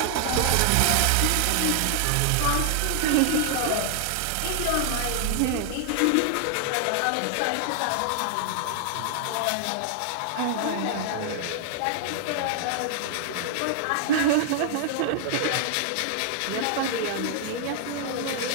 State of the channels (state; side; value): different; both; correlation 0.00